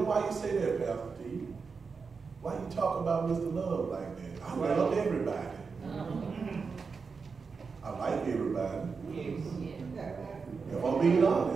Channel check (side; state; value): left; quieter; 5.1 dB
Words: why you say that, Pastor T? Why you talk about Mr. Love like that? I love everybody. I like everybody. If I'm being